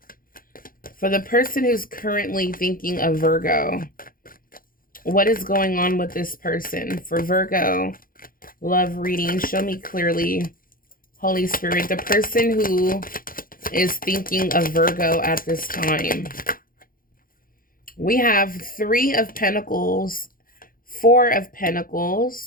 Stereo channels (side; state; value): right; late; 0.41 ms